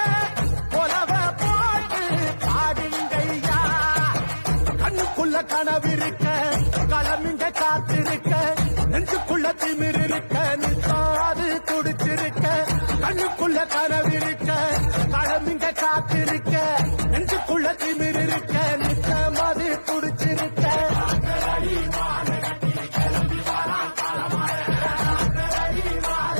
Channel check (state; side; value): inverted; both; correlation -1.00